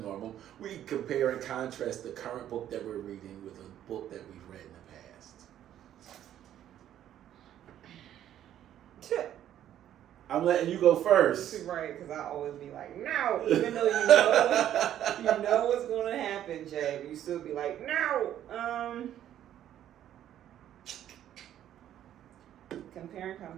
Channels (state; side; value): quieter; left; 11.3 dB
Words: we compare and contrast the current book that we're reading with a book that we've read in the past. I'm letting you go first. Right, because I always be like, no, even though you know what's going to happen, Jay, but you still be like, no. Comparing